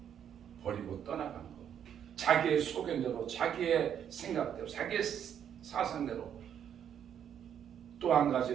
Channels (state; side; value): quieter; left; 9.1 dB